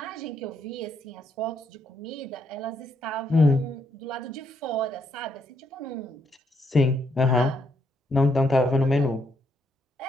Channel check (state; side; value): normal; both; correlation 0.75